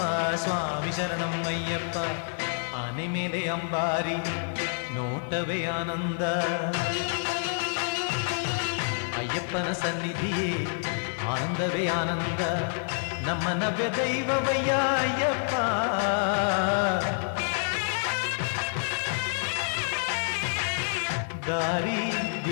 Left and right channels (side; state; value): right; silent; 59 dB below the other